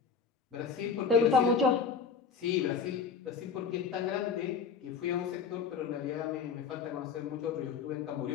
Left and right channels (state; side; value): quieter; right; 5.9 dB